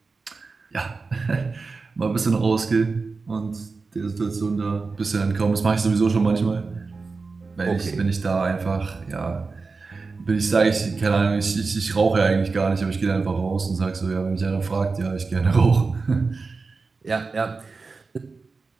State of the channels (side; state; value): left; quieter; 4.3 dB